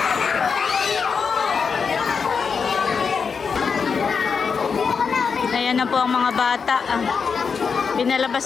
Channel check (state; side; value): quieter; right; 5.7 dB